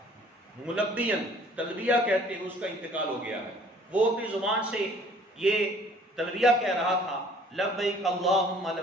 ملبین تلبیہ کہتے ہیں اس کا انتقال ہو گیا ہے. وہ اپنی زبان سے یہ تلبیہ کہہ رہا تھا، لبیک اللہم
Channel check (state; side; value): normal; both; correlation 0.55